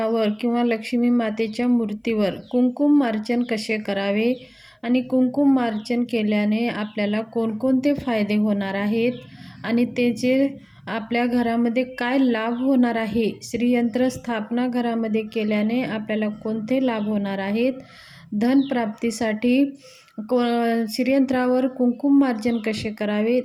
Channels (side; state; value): both; identical; correlation 1.00